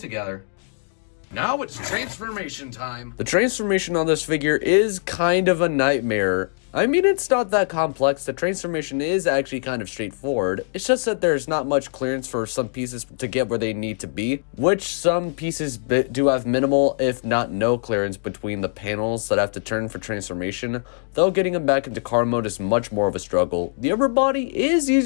Now it's transformation time. The transformation on this figure is kind of a nightmare. I mean, it's not that complex. The transformation is actually kind of straightforward. It's just that there's not much clearance for some pieces to get where they need to be, which some pieces do have minimal, if not no clearance between the panels that have to turn for transformation, though getting them back into car mode is much more of a struggle. The upper body is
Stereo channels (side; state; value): right; silent; digital silence